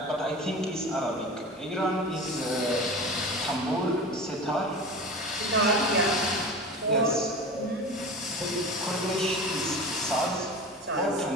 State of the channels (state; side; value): normal; both; correlation 0.32